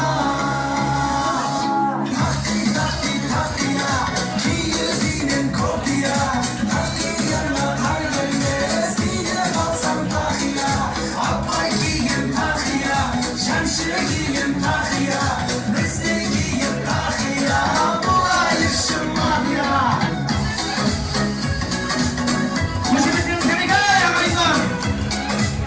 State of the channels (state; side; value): identical; both; correlation 1.00